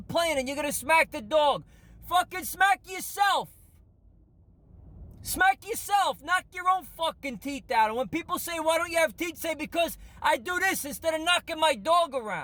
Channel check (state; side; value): identical; both; correlation 1.00